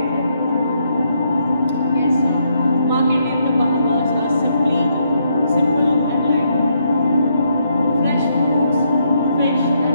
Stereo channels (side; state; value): both; inverted; correlation -0.76